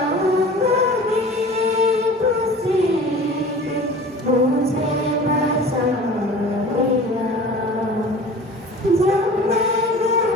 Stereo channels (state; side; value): normal; both; correlation 0.41